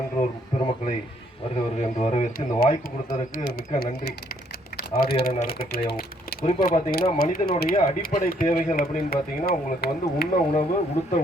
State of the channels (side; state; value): both; normal; correlation 0.67